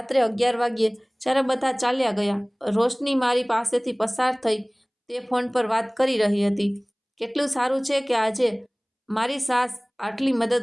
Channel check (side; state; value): both; identical; correlation 1.00